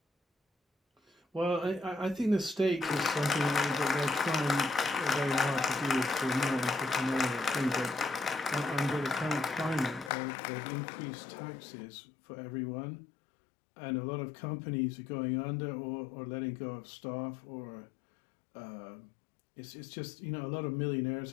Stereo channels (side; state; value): right; drops out; at 10.1 s